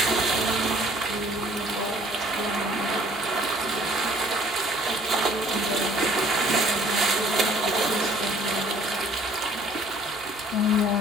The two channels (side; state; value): both; normal; correlation 0.57